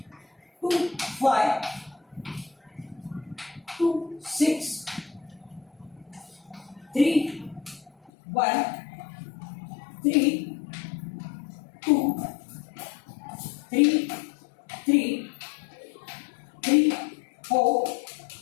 2, 5, 2, 6, 3, 1, 3, 2, 3, 3, 3, 4,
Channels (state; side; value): drops out; right; at 8.1 s